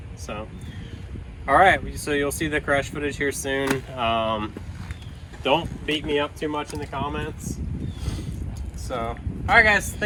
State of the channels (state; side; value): identical; both; correlation 1.00